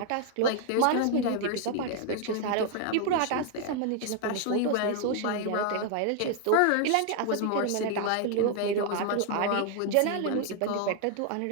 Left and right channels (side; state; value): both; different; correlation 0.00